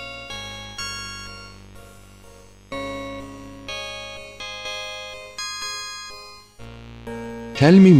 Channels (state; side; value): identical; both; correlation 1.00